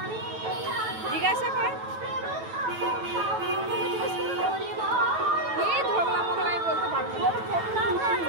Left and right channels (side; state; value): left; late; 9.1 ms